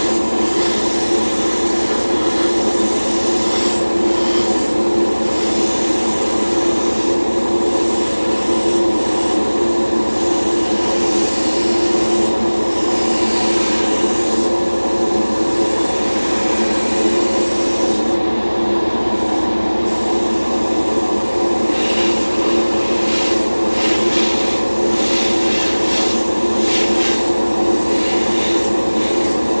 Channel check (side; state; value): both; inverted; correlation -1.00